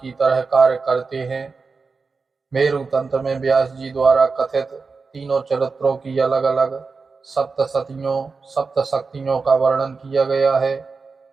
तरह कार्य करते हैं। मेरु तंत्र में व्यास जी द्वारा कथित तीनों चरित्रों की अलग अलग सप्तशक्तियों का वर्णन किया गया है।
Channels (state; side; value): quieter; left; 4.5 dB